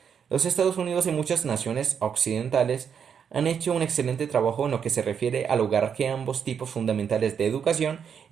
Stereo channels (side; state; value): left; quieter; 7.4 dB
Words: Los Estados Unidos y muchas naciones occidentales han hecho un excelente trabajo en lo que se refiere a lograr que ambos tipos fundamentales de educación